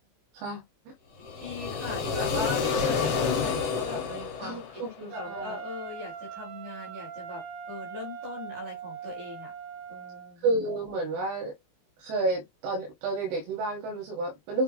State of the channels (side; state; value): left; late; 18 ms